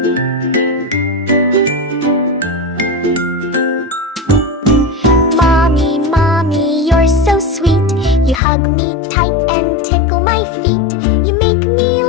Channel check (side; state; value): right; drops out; at 8.4 s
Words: Mommy, Mommy, you're so sweet. You hug me tight and tickle my feet. You make me